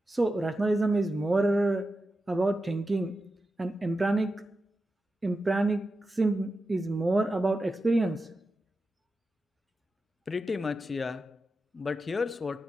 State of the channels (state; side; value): normal; both; correlation 0.91